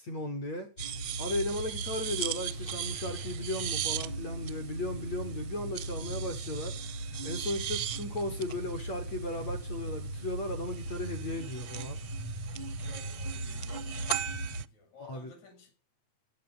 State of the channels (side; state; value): right; late; 8.4 ms